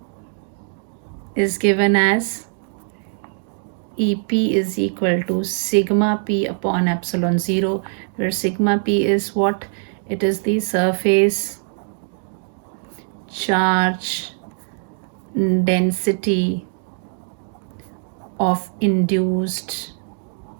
is given as EP is equal to sigma P upon epsilon 0, where sigma P is what? It is the surface charge density of induced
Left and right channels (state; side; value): silent; left; 63 dB below the other